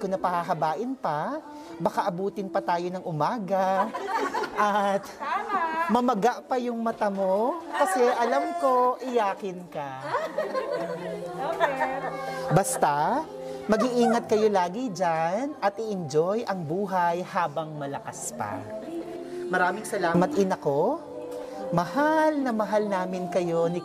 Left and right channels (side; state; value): both; identical; correlation 1.00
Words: na pahahabain pa, baka abutin pa tayo ng umaga. At mamaga pa yung mata mo kasi alam ko iyakin ka. Basta, mag-iingat kayo lagi dyan at i-enjoy ang buhay habang malakas pa. Maraming salamat, ina ko. Mahal na mahal namin kayo ni